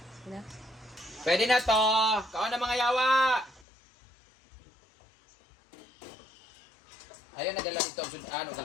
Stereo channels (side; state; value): right; drops out; at 3.7 s